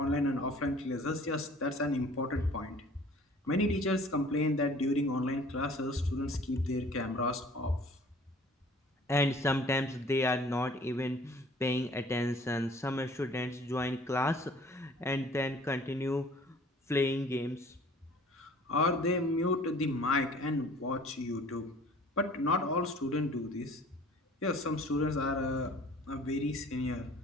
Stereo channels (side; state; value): both; normal; correlation 0.50